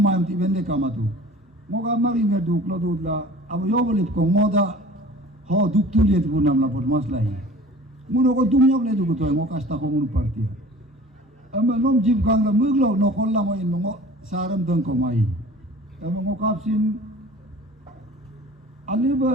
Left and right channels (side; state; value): both; normal; correlation 0.44